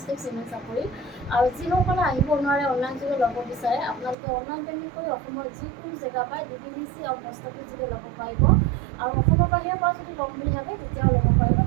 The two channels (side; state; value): left; drops out; at 4.2 s